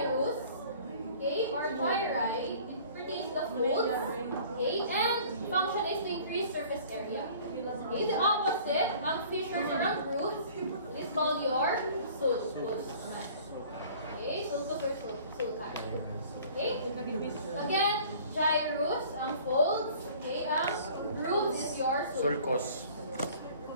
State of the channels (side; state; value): both; inverted; correlation -0.49